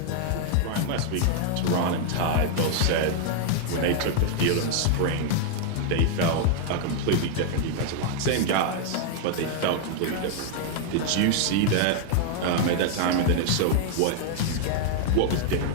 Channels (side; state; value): both; different; correlation -0.01